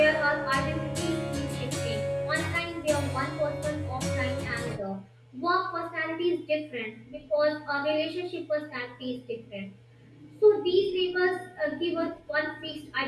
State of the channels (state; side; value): identical; both; correlation 1.00